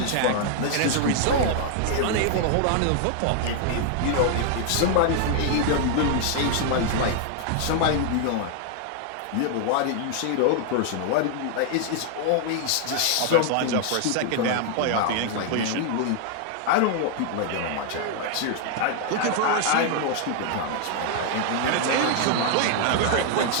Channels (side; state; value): both; different; correlation 0.00